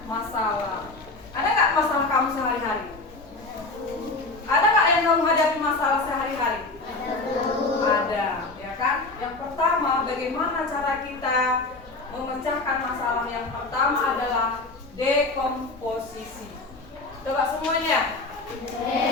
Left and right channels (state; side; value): quieter; right; 3.3 dB